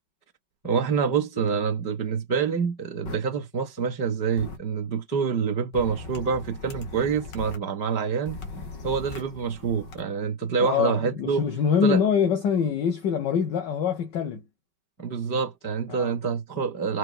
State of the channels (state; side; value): late; right; 5.3 ms